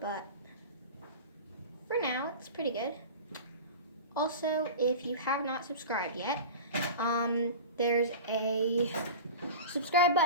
for now, it's pretty good. Also, if you have not subscribed yet, there's a subscribe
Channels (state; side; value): inverted; both; correlation -0.32